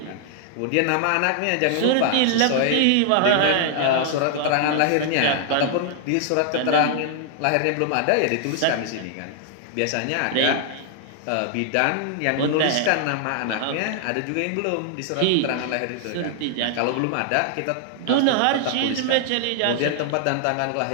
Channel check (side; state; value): both; different; correlation 0.00